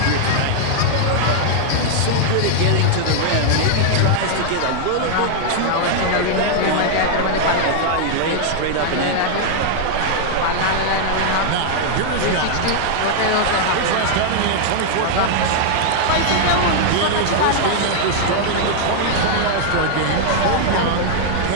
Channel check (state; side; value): different; both; correlation -0.01